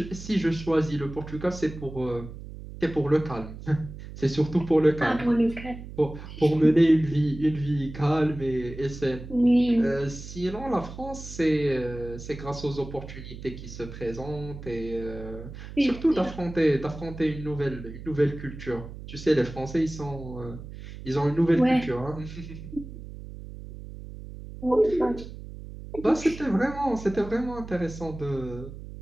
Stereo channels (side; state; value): right; noise; hum, 12 dB below the sound